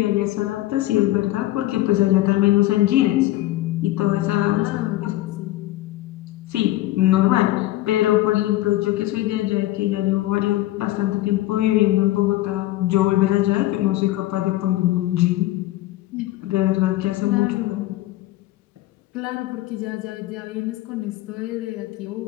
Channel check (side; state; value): right; quieter; 16.3 dB